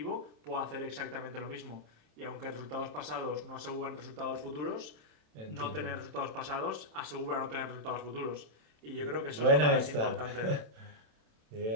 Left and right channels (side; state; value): left; late; 27 ms